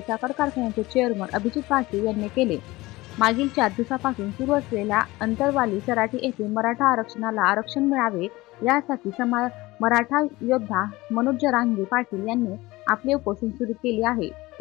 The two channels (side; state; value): right; quieter; 20.1 dB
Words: साखर कारखान्याचे चेअरमन अभिजित पाटील यांनी केले. मागील 4 दिवसापासून सुरू असलेल्या अंतरवाली सराटी येथे मराठा आरक्षणाला आरक्षण मिळावे यासाठी मराठा योद्धा मनोज जरांगे पाटील यांनी आपले उपोषण सुरू केले आहे.